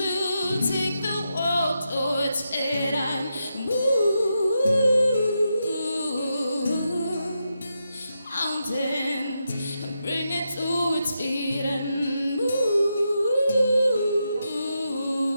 take the world to its feet and move mountains and bring it to its feet and move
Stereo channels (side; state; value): both; inverted; correlation -0.85